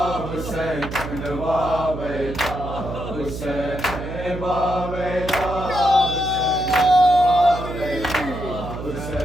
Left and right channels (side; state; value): right; noise; hum, 8 dB below the sound